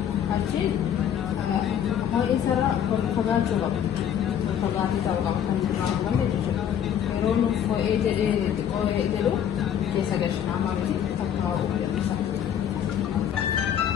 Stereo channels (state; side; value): quieter; right; 9.3 dB